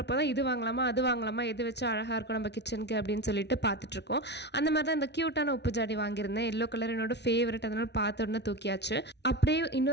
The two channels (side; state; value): right; late; 0.50 ms